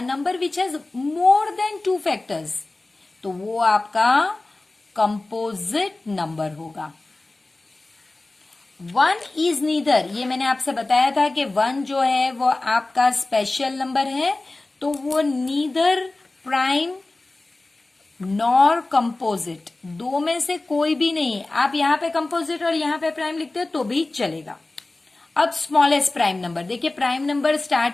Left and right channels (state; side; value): quieter; right; 3.0 dB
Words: number which has more than 2 factors, तो वो आपका कंपोजिट नंबर होगा। 1 इज नीदर, ये मैंने आपसे बताया था कि 1 जो है वो आपका स्पेशल नंबर है, तो वो नीदर प्राइम नॉर कंपोजिट, दो में से कोई भी नहीं है। आप यहां पे कंपोजिट और यहां पे प्राइम लिखते हो तो भी चलेगा। अब स्मॉलेस्ट प्राइम नंबर, देखिए प्राइम नंबर